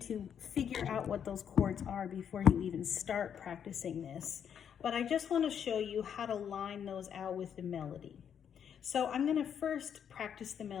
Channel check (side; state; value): right; quieter; 8.3 dB